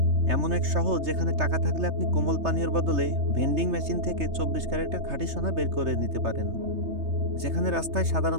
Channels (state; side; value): late; left; 3.3 ms